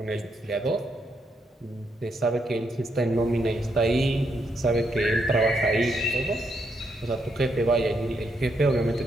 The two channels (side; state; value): both; normal; correlation 0.78